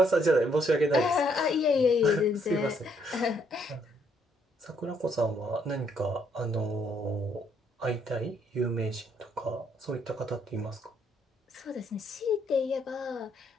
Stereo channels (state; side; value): normal; both; correlation 0.70